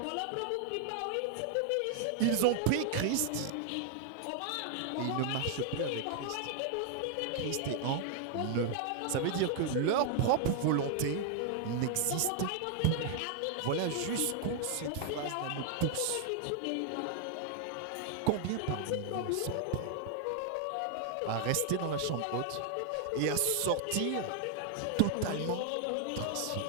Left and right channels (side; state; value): both; different; correlation 0.00